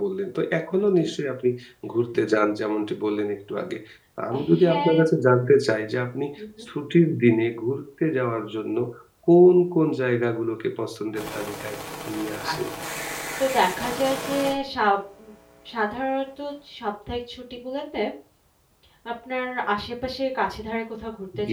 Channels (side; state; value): both; identical; correlation 1.00